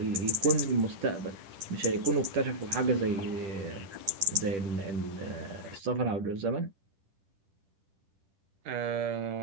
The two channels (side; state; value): left; late; 10 ms